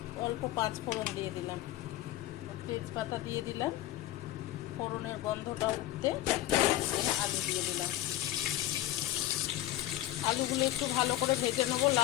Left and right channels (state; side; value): quieter; right; 15.0 dB